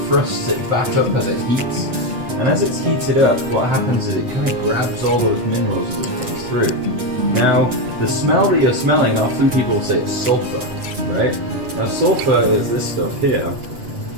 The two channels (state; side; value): late; left; 8.0 ms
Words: thrusts it back up as it heats. And as it's heated up, what happens is it kind of grabs all those minerals as it comes through. Now, the smell that you're smelling, often people say it's sulfur, right? Now, sulfur is this stuff here,